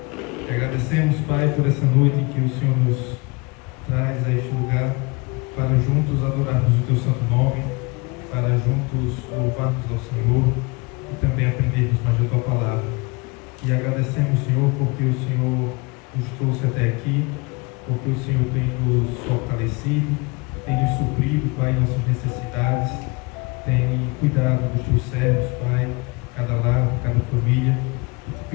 Agradecemos, Pai, por essa noite em que o Senhor nos traz a este lugar para juntos adorarmos o Teu santo nome, para juntos louvarmos ao Senhor e também aprendermos mais da Tua palavra. E agradecemos, Senhor, porque o Senhor nos trouxe até aqui, porque o Senhor tem nos fortalecido, tem nos suprido, Pai, nossas necessidades, tem cuidado dos Teus servos, Pai, cada lar, cada família, e te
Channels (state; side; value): quieter; right; 27.7 dB